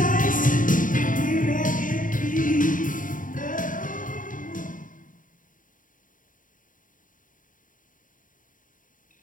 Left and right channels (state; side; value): late; right; 0.39 ms